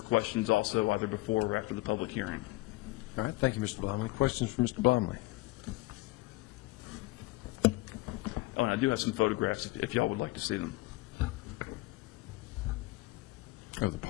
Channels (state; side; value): quieter; right; 20.1 dB